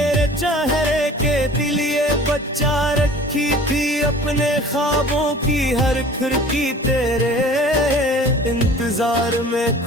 चेहरे के लिए बचा रखी थी। अपने ख्वाबों की हर खिड़की तेरे इंतजार में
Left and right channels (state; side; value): normal; both; correlation 0.45